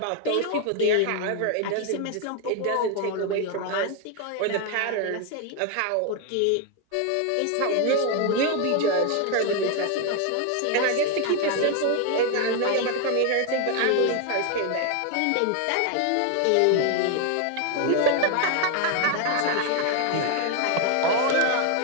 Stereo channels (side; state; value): both; different; correlation 0.01